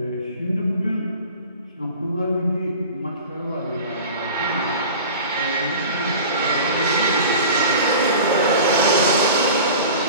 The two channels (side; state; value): both; inverted; correlation -0.38